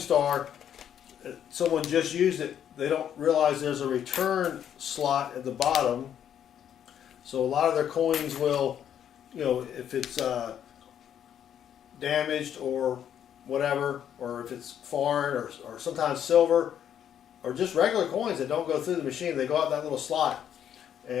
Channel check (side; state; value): right; quieter; 9.5 dB